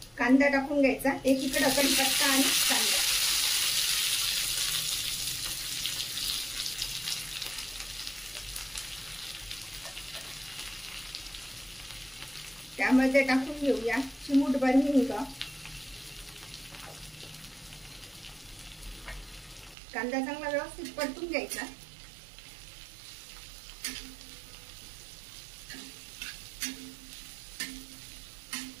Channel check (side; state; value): left; drops out; at 19.8 s